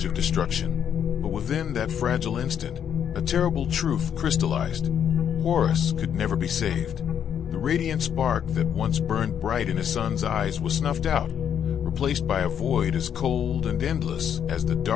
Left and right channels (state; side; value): quieter; right; 8.7 dB